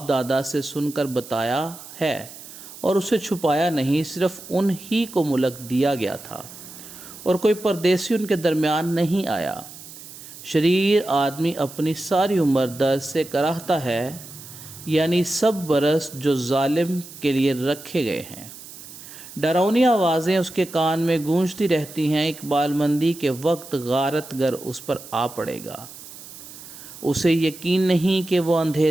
दादा से सुनकर बताया है और उसे छुपाया नहीं। सिर्फ उन ही को मुल्क दिया गया था और कोई परदेसी उनके दरमियान नहीं आया। शरीर आदमी अपनी सारी उम्र दर्द से कराहता है, यानी सब बरस जो जालिम के लिए रखे गए हैं। डरावनी आवाज़ें उसके कान में गूंजती रहती हैं। इकबालमंदी के वक्त गारतगर उस पर आ पड़ेगा। उसे यकीन नहीं कि वो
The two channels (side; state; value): right; noise; hiss, 16 dB below the sound